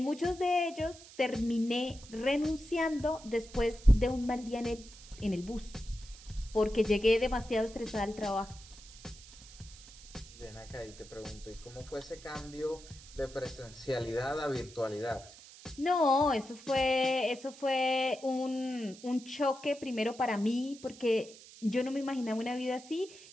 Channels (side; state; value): right; noise; hiss, 19 dB below the sound